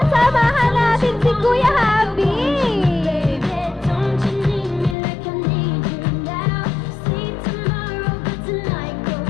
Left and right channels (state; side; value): drops out; right; at 5.0 s